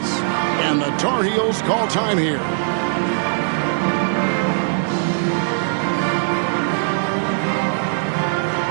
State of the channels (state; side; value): silent; left; digital silence